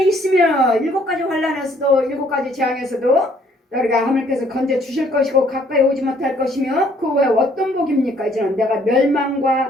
있으면 7가지 환난에서도 7가지 재앙에서도 너희가 하나님께서 건져 주실 것이고 가까이 오지 못할 것이며 그 외에 어떤 복입니까? 이제는 내가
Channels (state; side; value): normal; both; correlation 0.63